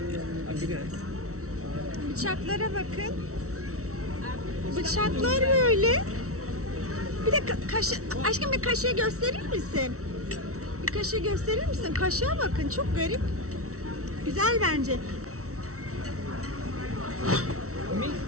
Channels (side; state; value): left; late; 0.64 ms